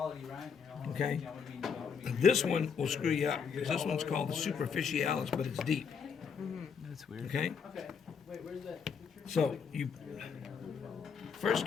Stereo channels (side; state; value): right; quieter; 6.4 dB